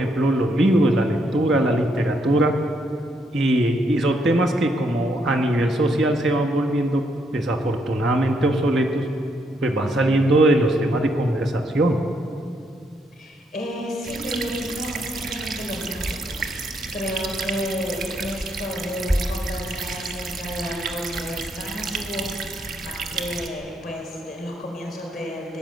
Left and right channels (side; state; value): both; normal; correlation 0.75